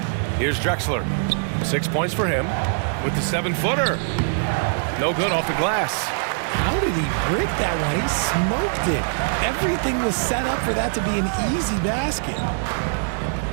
Here's Drexler. 6 points for him with the 7-footer. No good off the glass. How did he break that one? He smoked it. Everything was set up for that to be an easy basket.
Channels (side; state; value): left; silent; 64 dB below the other